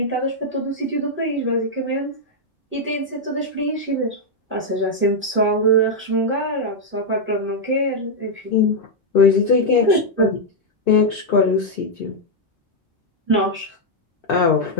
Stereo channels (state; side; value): normal; both; correlation -0.02